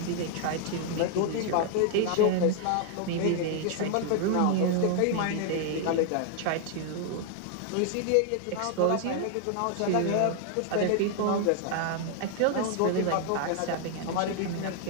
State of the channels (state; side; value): different; both; correlation 0.00